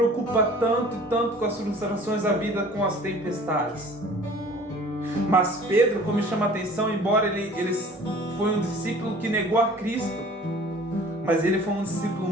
tanto e tanto com as frustrações da vida, com as tempestades. Mas Pedro, como me chama a atenção, embora ele foi um discípulo que negou a Cristo, mas ele foi um discípulo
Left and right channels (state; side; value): normal; both; correlation 0.48